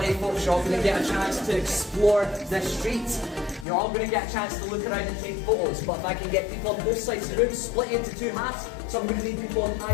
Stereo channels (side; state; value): right; drops out; at 3.7 s